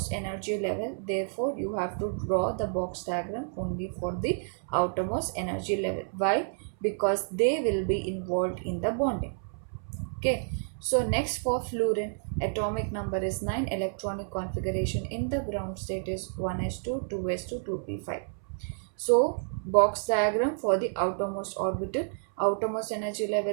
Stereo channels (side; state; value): left; silent; 58 dB below the other